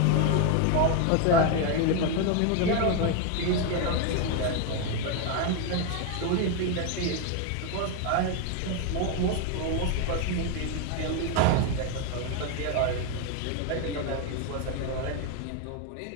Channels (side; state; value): both; different; correlation 0.02